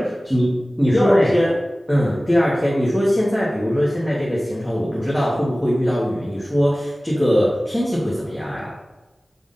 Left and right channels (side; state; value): both; normal; correlation 0.97